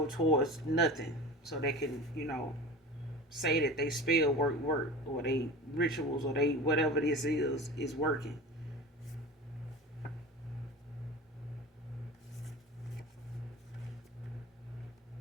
towards nothing so they can, say that they spell work or they rituals or they whatever this is working.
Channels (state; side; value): normal; both; correlation 0.35